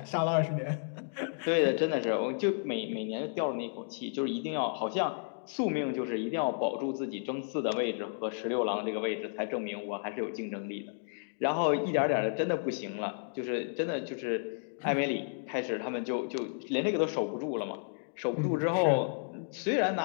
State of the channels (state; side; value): silent; right; digital silence